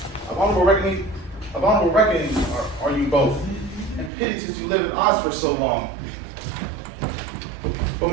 Of honorable reckoning are you both. And pity since you lived at odds for so long. But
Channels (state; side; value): drops out; left; at 4.1 s